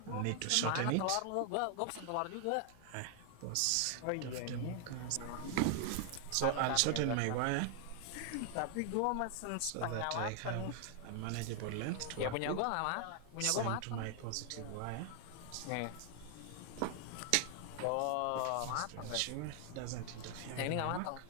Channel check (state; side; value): different; both; correlation 0.00